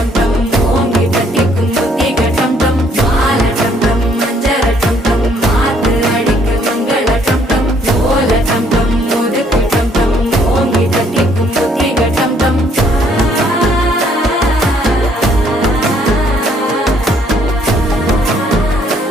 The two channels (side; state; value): both; normal; correlation 0.65